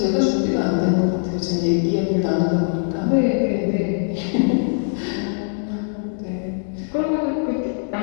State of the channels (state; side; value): silent; right; digital silence